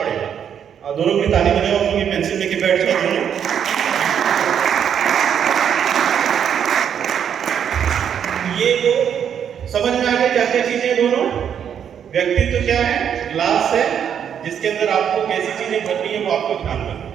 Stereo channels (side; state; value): left; quieter; 8.5 dB